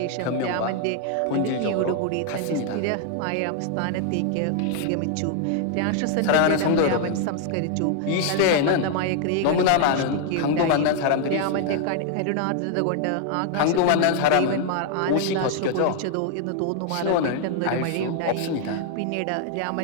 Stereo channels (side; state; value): both; different; correlation 0.00